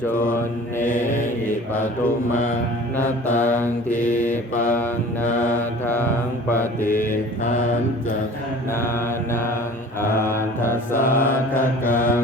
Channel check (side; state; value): both; normal; correlation 0.44